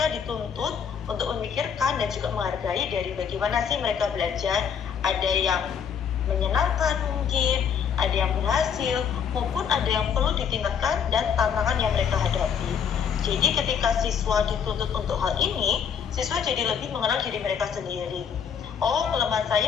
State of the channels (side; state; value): right; quieter; 7.4 dB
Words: dituntut untuk memikirkan dan juga menghargai dari bagaimana sih mereka belajar, ada yang menyenangkan mungkin, ada yang berhasil, maupun ada yang perlu ditingkatkan dan tantangan yang mereka hadapi. Jadi ketika siswa dituntut untuk hal ini, siswa jadi lebih mengenal diri mereka sendiri. Oh, kelemahan